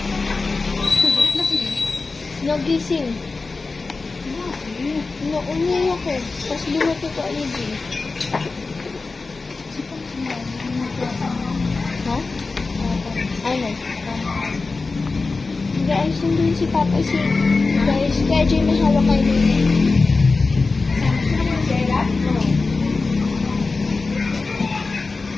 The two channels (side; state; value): right; quieter; 3.9 dB